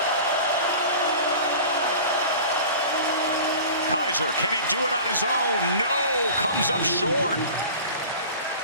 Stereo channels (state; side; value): inverted; both; correlation -0.39